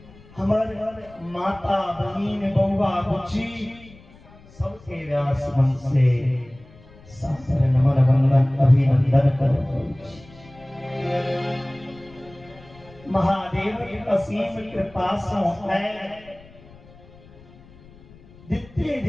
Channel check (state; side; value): noise; left; rumble, 23 dB below the sound